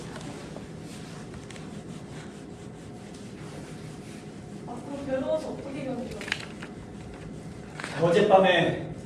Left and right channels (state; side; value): identical; both; correlation 1.00